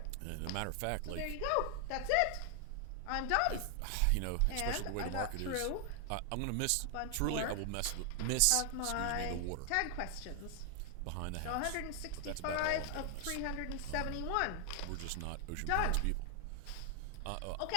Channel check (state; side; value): different; both; correlation 0.00